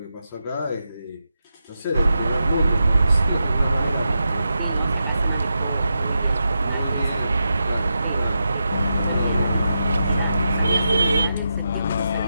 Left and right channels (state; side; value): inverted; both; correlation -0.87